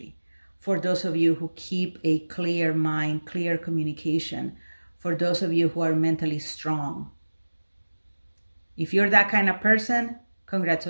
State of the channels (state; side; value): inverted; both; correlation -1.00